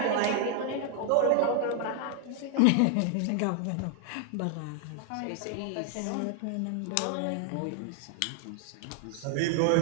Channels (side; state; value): both; different; correlation 0.00